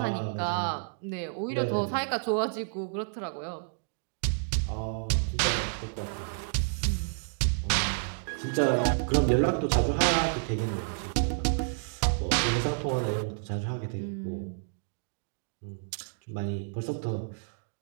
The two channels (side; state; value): left; silent; digital silence